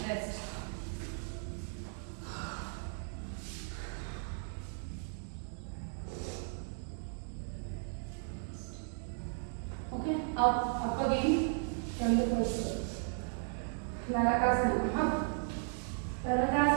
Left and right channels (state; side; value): silent; left; 54 dB below the other